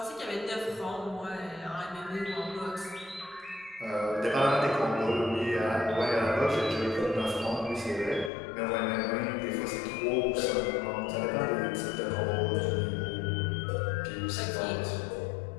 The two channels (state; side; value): drops out; right; at 8.3 s